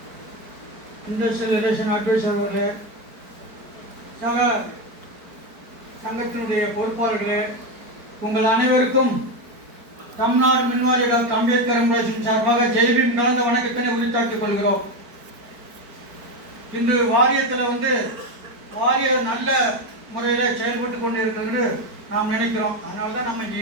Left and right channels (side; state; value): left; late; 4.7 ms